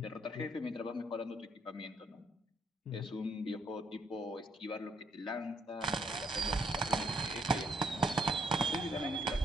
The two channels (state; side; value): normal; both; correlation 0.72